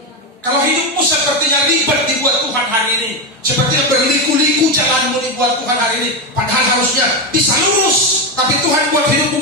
Kalau hidupmu sepertinya ribet dibuat Tuhan hari ini, sepertinya berliku-liku jalanmu dibuat Tuhan hari ini, padahal harusnya bisa lurus, tapi Tuhan buat hidupmu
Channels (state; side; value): normal; both; correlation 0.12